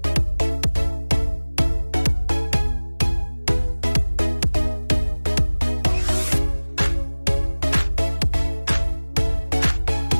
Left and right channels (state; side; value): inverted; both; correlation -1.00